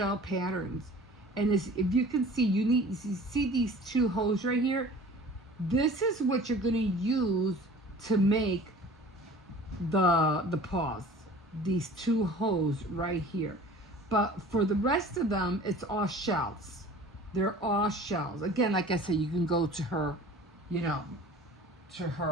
patterns. And if you can see, you see these 2 holes right here? This is what you're gonna use to make the paws, these 2 holes right here. But for the rest of them, it's all shells. They're all shells. Again, like I said, you can go to her,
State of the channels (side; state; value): both; normal; correlation 0.44